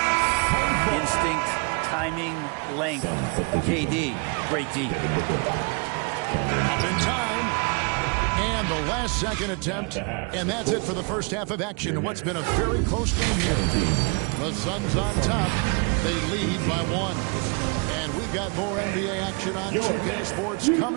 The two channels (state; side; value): quieter; left; 34.4 dB